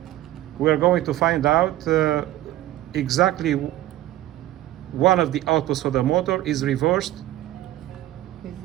We're going to find out exactly one of the outputs for the motor is reversed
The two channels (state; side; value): quieter; left; 14.8 dB